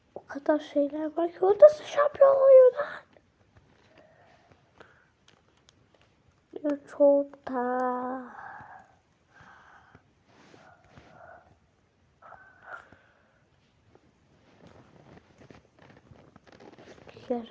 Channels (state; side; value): identical; both; correlation 1.00